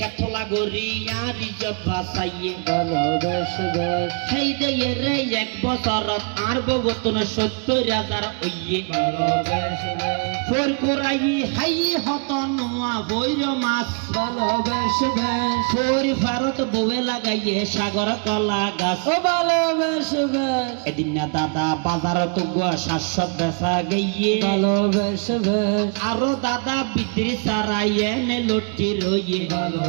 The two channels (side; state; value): left; quieter; 38.4 dB